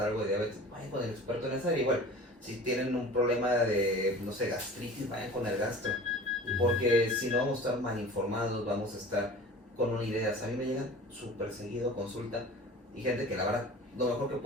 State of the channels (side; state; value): both; normal; correlation 0.40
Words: algo de diabetes, vayan con el experto en esa área. Igual, si tienen un problema de, no sé, gastritis, vayan con el gastro. Porque si no, vamos a estar mal informados, vamos a estar con una idea. A mí me llegan súper seguido a consulta y gente que la verdad, lo mejor que